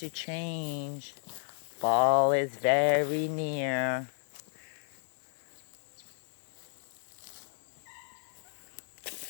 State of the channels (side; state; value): right; silent; digital silence